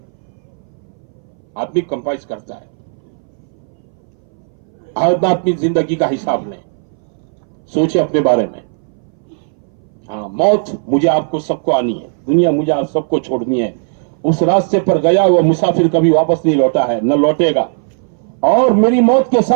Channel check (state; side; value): silent; left; 63 dB below the other